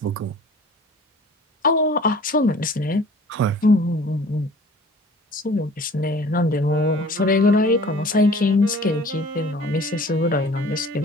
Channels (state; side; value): normal; both; correlation 0.47